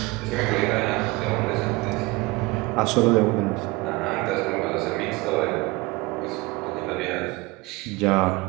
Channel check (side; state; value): left; quieter; 23.3 dB